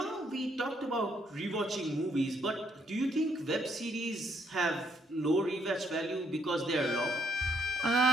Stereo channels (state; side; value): normal; both; correlation 0.71